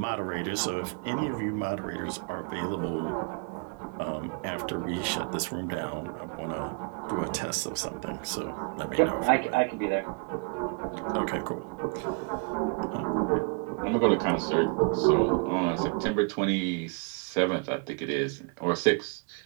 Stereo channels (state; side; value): quieter; left; 37.0 dB